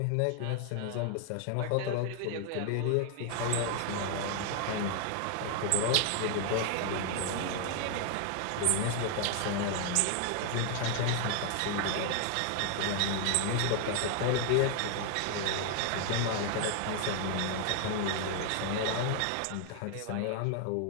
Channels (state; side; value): different; both; correlation 0.00